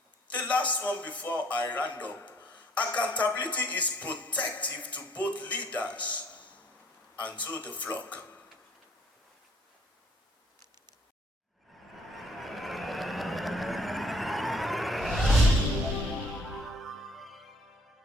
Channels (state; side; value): normal; both; correlation 0.59